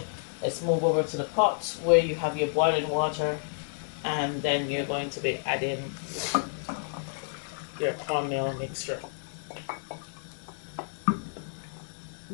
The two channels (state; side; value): silent; right; digital silence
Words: let's move over to the pot where you have your boiling water, and then you're going to be adding your cornmeal mixture.